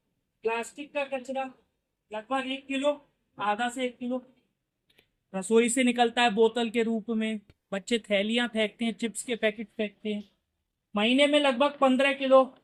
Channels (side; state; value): both; identical; correlation 1.00